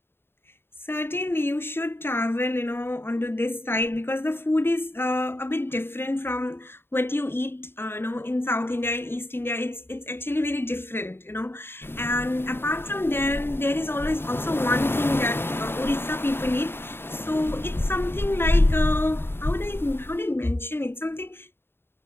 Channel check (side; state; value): right; late; 0.11 ms